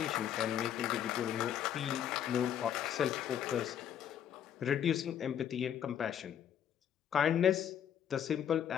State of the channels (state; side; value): quieter; right; 9.6 dB